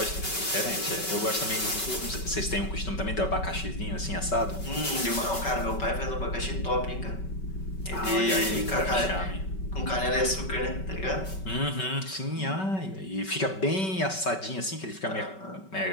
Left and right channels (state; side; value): late; right; 5.3 ms